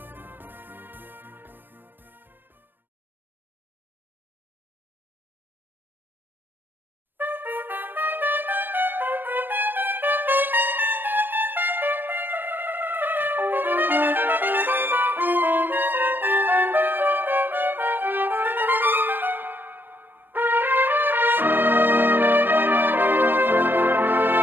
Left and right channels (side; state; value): left; late; 0.094 ms